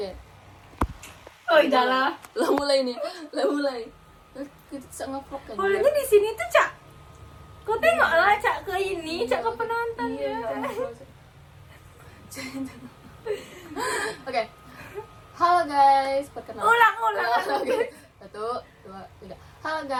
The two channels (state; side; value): identical; both; correlation 1.00